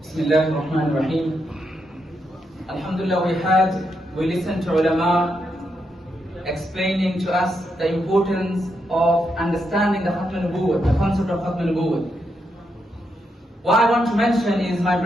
Bismillah ar-Rahman ar-Rahim. Alhamdulillah, we listened to ulama explaining to us the importance of understanding the Khatm al-Nubuwwah, the concept of Khatm al-Nubuwwah. What I want to mention is, my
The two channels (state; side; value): normal; both; correlation 0.82